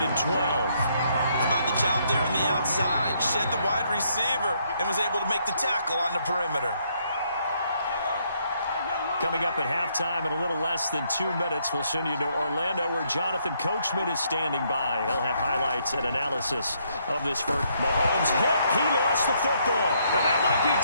and 12. How about the job there on the outside? Shed the wide receiver and was able to make the tackle on the perimeter. Coming up at halftime in a little less than 2 minutes, we'll send you to Orlando where Jonathan Coachman is standing by. He'll have highlights and analysis of this first. Mahomes hit. He lost the football. And that might be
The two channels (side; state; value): both; inverted; correlation -0.72